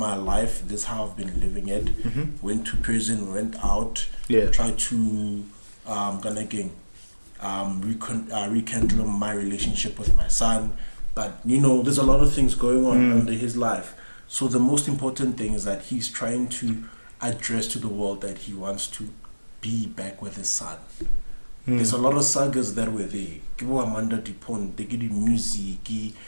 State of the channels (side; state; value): both; inverted; correlation -1.00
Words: life, this is how I've been living it. Went to prison, went out, tried to rekindle my relationship with my son. But there's a lot of things going on under his life. So the most important thing is that he's trying to address to the world that he wants to be back with his son. There's a lot of sagas that were there. Amanda Pont, they give music,